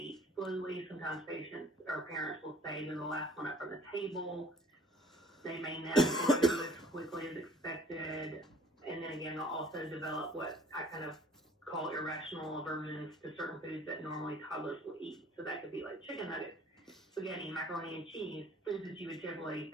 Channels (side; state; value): both; normal; correlation 0.53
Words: slowly. Sometimes patients or parents will say they're the last one up from the table. They may not do as quickly as expected. And then again, they'll also develop what I kind of call irrational aversions to certain foods that normally toddlers will eat. So that could be like chicken nuggets, spaghetti, macaroni and cheese, foods that you would typically